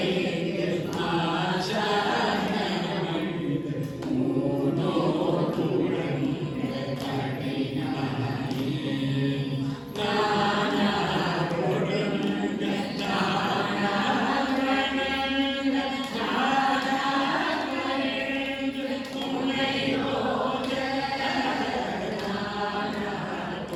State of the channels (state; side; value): identical; both; correlation 1.00